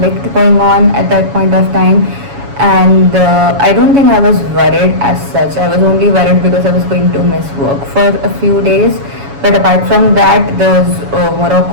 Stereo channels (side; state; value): left; late; 7.2 ms